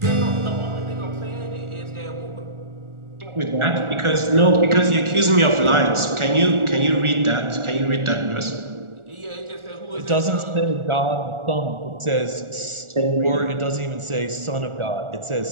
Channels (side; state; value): left; late; 1.4 ms